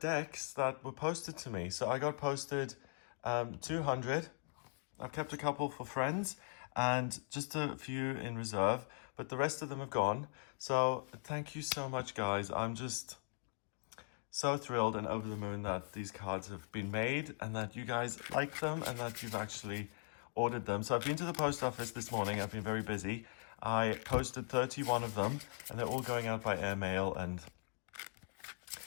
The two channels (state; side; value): silent; right; 51 dB below the other